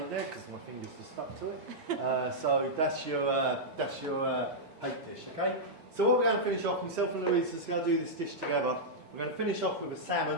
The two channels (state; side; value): normal; both; correlation -0.08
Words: there because my fingers are stuck to it. So that's your hake dish, okay? So what we're going to finish off, myself and Louise is going to do this dish together. We're going to finish off with a